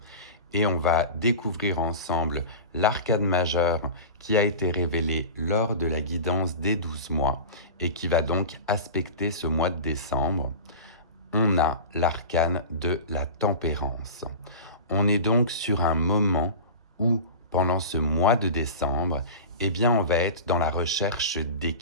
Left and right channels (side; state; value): both; inverted; correlation -0.31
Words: et on va découvrir ensemble l'arcane majeur qui a été révélé lors de la guidance des 12 mois et qui va donc aspecter ce mois de décembre. On a l'arcane de la tempérance. On est donc sur un moment où, pendant ce mois de décembre, eh bien, on va être dans la recherche